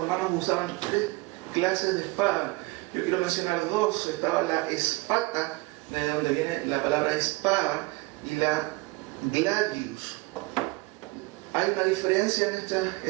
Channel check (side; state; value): left; quieter; 23.9 dB